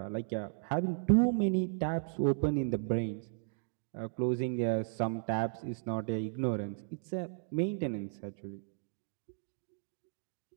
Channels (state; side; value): silent; left; digital silence